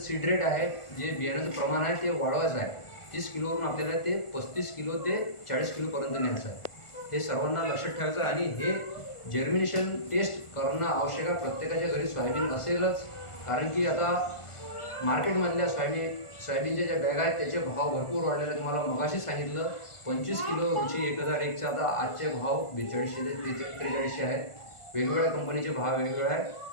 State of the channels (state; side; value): late; right; 1.4 ms